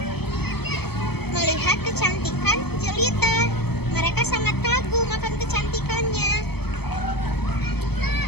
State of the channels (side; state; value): right; late; 0.97 ms